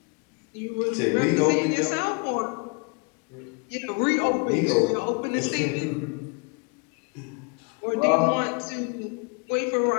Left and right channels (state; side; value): quieter; right; 33.5 dB